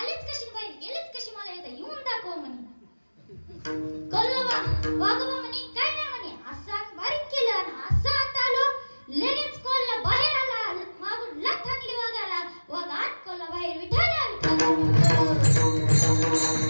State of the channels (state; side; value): inverted; both; correlation -1.00